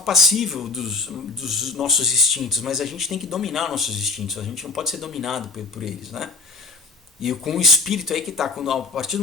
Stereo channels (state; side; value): quieter; right; 3.5 dB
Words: dos nossos instintos, mas a gente tem que dominar nossos instintos, a gente não pode ser dominado por eles, né? E com o espírito aí que está, a partir do